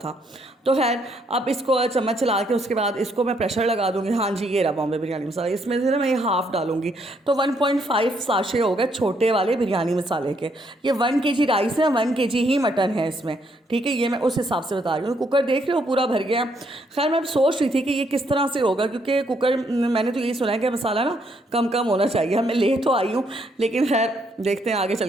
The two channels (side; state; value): both; normal; correlation 0.72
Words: तो खैर अब इसको चम्मच चला के उसके बाद इसको मैं प्रेशर लगा दूँगी। हाँ जी, ये रहा बॉम्बे बिरयानी मसाला, इसमें से ना मैं ये हाफ़ डालूँगी, तो 1.5 साशे हो गए छोटे वाले बिरयानी मसाले के। ये 1 kg राइस है, 1 kg ही मटन है इसमें, ठीक है। ये मैं उस हिसाब से बता रही हूँ। कुकर देख रहे हो पूरा भर गया। खैर मैं सोच रही थी कि ये किस तरह से होगा, क्योंकि कुकर मैंने तो यही सुना है कि मसाला ना कम कम होना चाहिए। मैं ले तो आई हूँ, लेकिन खैर देखते हैं आगे